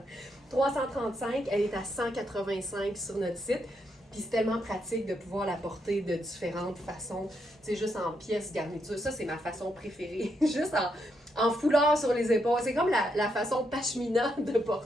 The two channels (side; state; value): both; normal; correlation 0.79